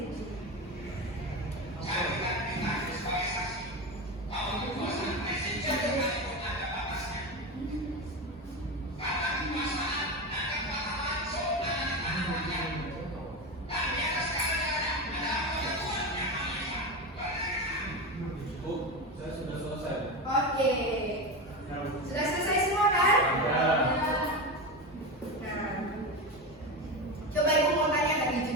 Oh, saya sudah selesai. Oke. Sudah selesai semua kan? Ya. Nah, coba ibu mau tanya tadi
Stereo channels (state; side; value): normal; both; correlation 0.20